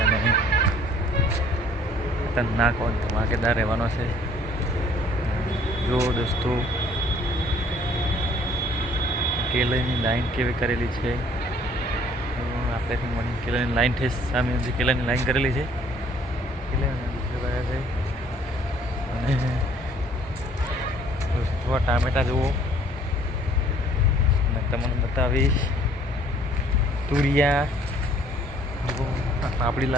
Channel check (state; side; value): normal; both; correlation 0.58